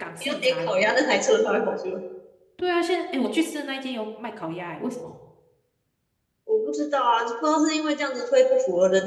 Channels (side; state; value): both; identical; correlation 1.00